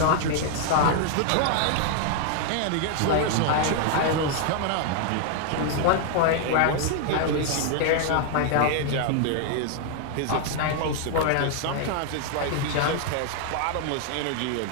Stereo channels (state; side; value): different; both; correlation 0.00